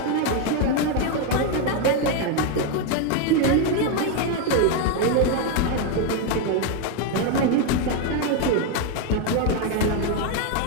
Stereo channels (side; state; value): both; different; correlation 0.01